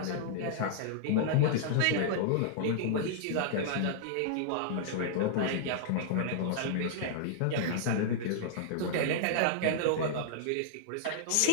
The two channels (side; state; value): both; different; correlation -0.02